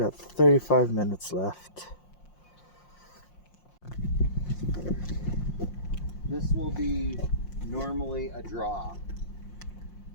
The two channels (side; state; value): right; late; 5.6 ms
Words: 35 minutes left. This will be normally a draw,